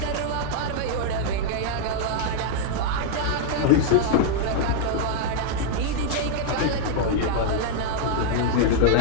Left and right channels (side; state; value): both; different; correlation -0.01